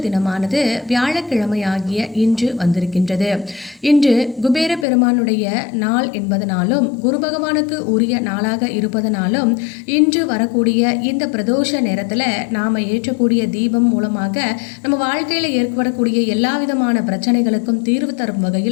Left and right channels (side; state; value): right; drops out; at 4.9 s